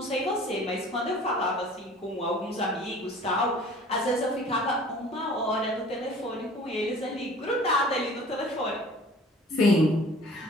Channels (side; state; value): both; normal; correlation 0.48